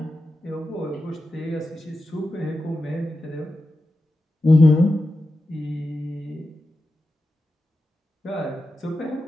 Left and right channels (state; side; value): normal; both; correlation 0.91